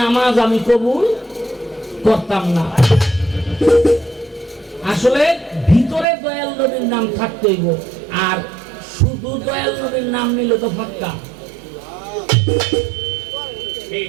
আমি কবুল করতাম না। আসলে ভিতরে দয়াল নবীর নাম থাকতে হইব, আর শুধু দয়াল নবীর নাম নিলে তো ফাক্কা।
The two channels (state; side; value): drops out; left; at 6.1 s